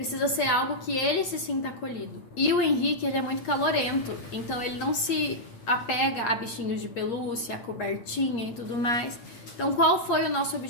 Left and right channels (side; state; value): right; late; 8.5 ms